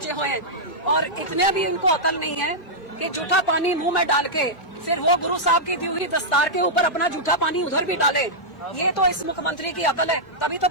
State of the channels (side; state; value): right; late; 2.5 ms